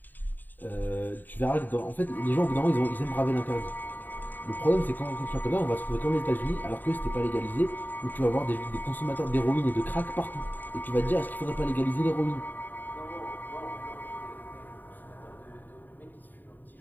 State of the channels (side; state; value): right; late; 0.089 ms